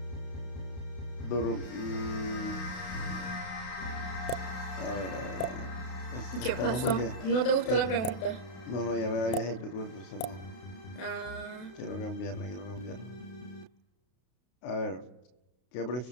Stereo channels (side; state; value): right; late; 32 ms